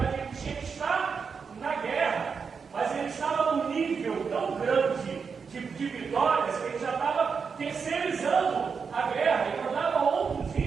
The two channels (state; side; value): quieter; left; 5.7 dB